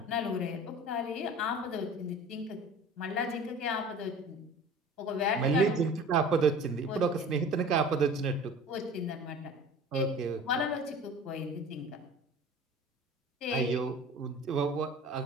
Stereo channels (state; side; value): normal; both; correlation 0.41